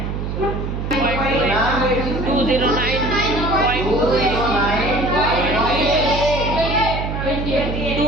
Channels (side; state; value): right; noise; hum, 4 dB below the sound